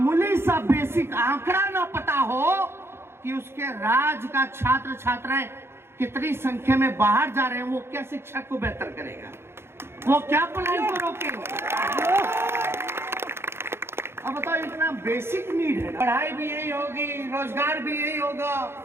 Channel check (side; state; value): left; late; 0.12 ms